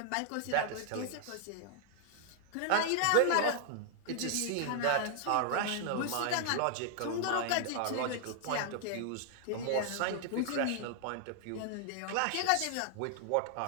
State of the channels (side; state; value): both; different; correlation -0.01